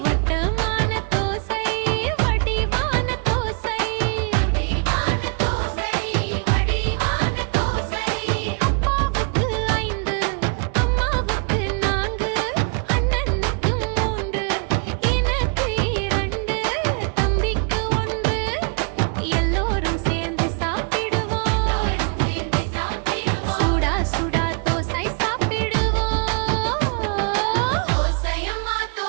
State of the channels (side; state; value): left; quieter; 38.4 dB